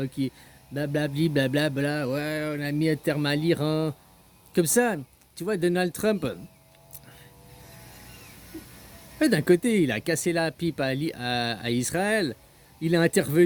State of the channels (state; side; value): identical; both; correlation 1.00